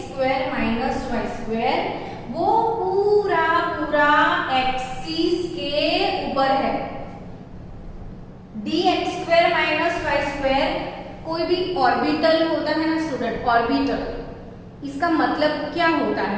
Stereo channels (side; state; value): both; identical; correlation 1.00